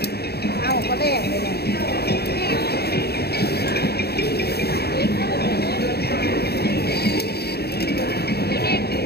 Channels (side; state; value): right; late; 0.47 ms